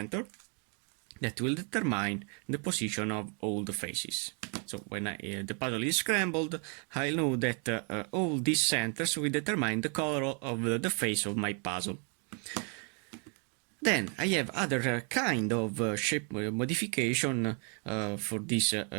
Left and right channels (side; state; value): left; quieter; 38.4 dB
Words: that will determine the position of all the faces. So when the puzzle is scrambled, I know that all these centers will determine the color of the face of my puzzle. Then I have other kind of shape modification for this